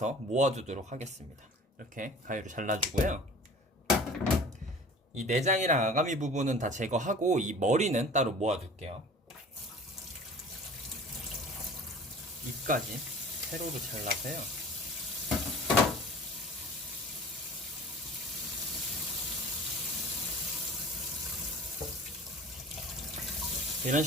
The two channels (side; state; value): both; normal; correlation 0.43